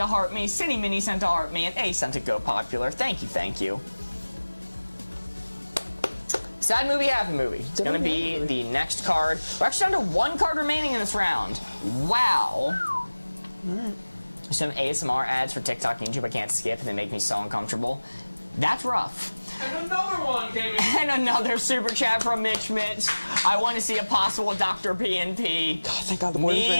a heart me, Cindy Mini sent a heart me, and A sent a go popular. Thank you. Sad movie, happy movie. It's gonna be the next card. We're actually down to 1 card remaining in this round. Wow. Some ASMR ads for TikTok and YouTube I can't skip and they make me so uncomfortable. That's rough. And another one came in. And another super chat from Mitch. I want to see a possible Dr. PNP. God, thank God the board is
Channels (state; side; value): inverted; both; correlation -1.00